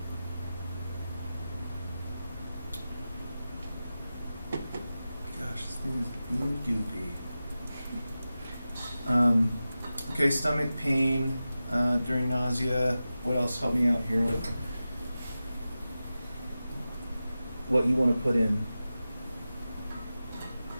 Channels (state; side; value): inverted; both; correlation -0.94